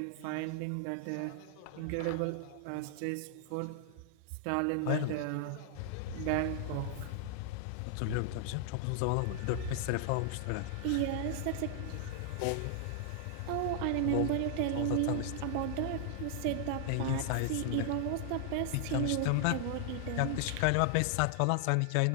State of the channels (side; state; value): both; different; correlation 0.00